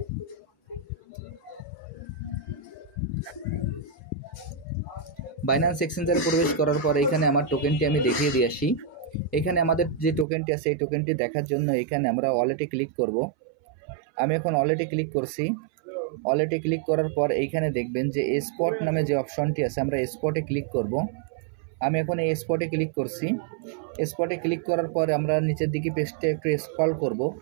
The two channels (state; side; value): drops out; left; at 10.2 s